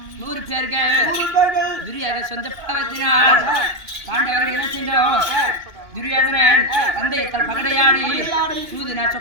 100 பேர்கள் துரியோதன சொந்த பாவத்தினால் பாண்டவர்கள் என்ன செய்தோம்? துரியோதனன் தந்தையத்தால் பகடையாடி சூதினா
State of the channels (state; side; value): late; left; 2.6 ms